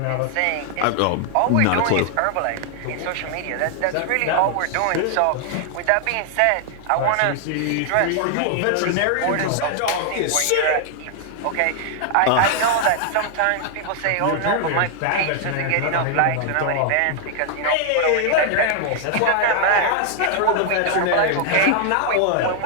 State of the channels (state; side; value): different; both; correlation 0.00